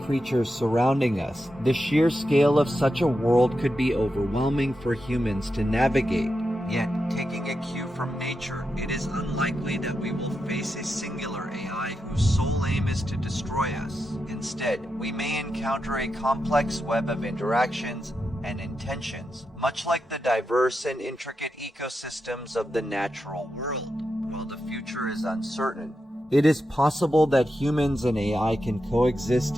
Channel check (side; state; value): both; normal; correlation 0.87